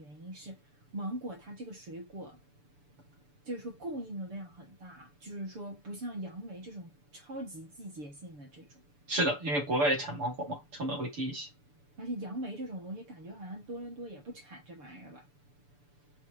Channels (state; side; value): late; left; 6.9 ms